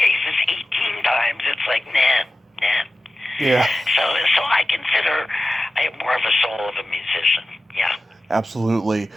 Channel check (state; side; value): normal; both; correlation 0.94